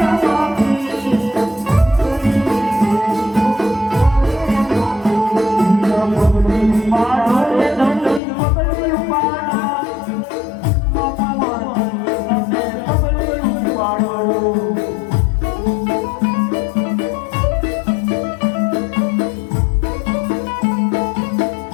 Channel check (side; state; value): right; drops out; at 8.2 s